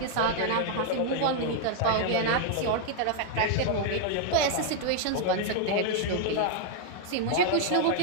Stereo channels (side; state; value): both; different; correlation 0.00